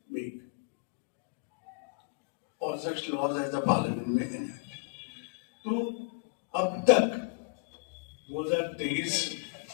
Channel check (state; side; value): quieter; right; 35.8 dB